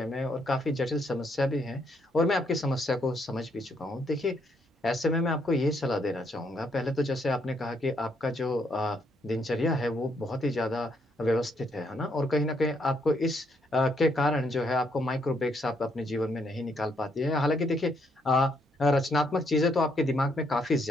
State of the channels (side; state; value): both; normal; correlation 0.73